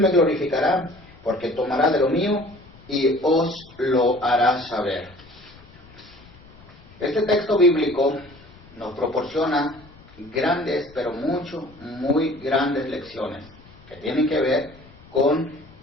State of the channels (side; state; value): left; noise; rumble, 24 dB below the sound